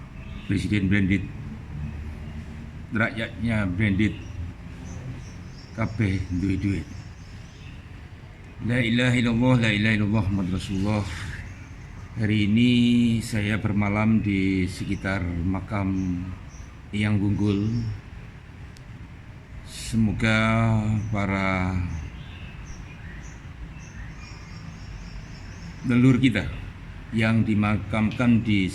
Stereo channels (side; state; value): both; identical; correlation 1.00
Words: Presiden Branded, rakyatnya Branded, kabeh duwe duit. La ilaha illallah, la ilaha illallah, Muhammad Rasulullah. Hari ini saya bermalam di sekitar makam Eyang Gunggul. Semoga para leluhur kita yang dimakamkan di